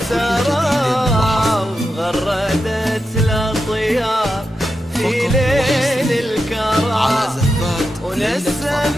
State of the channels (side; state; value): both; normal; correlation 0.88